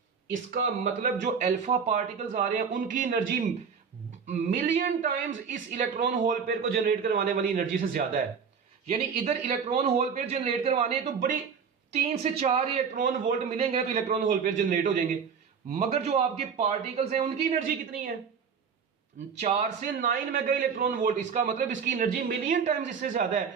इसका मतलब जो अल्फा पार्टिकल्स आ रहे हैं उनकी एनर्जी मिलियन टाइम्स इस इलेक्ट्रॉन होल पेयर को जनरेट करवाने वाली एनर्जी से ज्यादा है। यानी इधर इलेक्ट्रॉन होल पेयर जनरेट करवाने तो बड़ी 3 से 4 इलेक्ट्रॉन वोल्ट मिलेंगे तो इलेक्ट्रॉन होल पेयर जनरेट हो जाएंगे, मगर जो आपके पार्टिकल्स हैं उनकी एनर्जी कितनी है, 4 से 9 मेगा इलेक्ट्रॉन वोल्ट। इसका मतलब इसकी एनर्जी मिलियन टाइम्स इससे ज्यादा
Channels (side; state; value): left; quieter; 6.4 dB